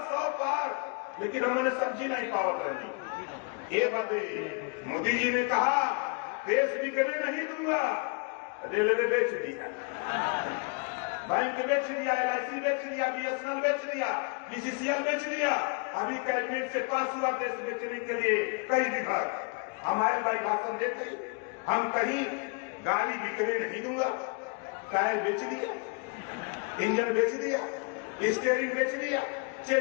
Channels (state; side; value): quieter; right; 34.7 dB